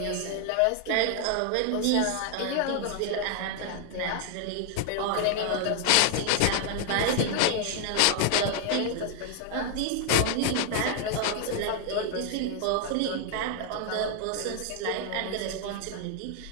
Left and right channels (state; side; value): different; both; correlation 0.00